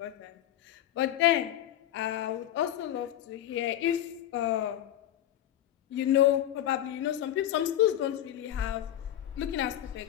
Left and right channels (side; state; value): right; quieter; 12.0 dB